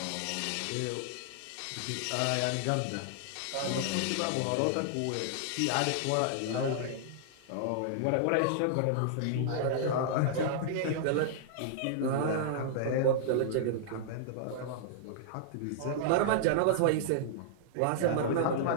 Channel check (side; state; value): both; different; correlation -0.01